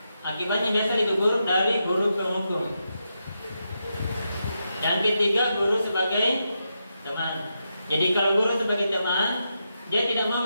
akibatnya biasa lebih buruk dari guru penghukum. Yang ketiga, guru sebagai teman. Jadi kalau guru sebagai teman, dia tidak mau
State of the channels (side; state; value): both; inverted; correlation -0.85